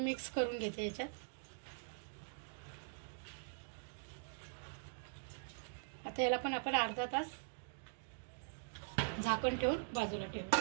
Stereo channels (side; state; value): left; silent; digital silence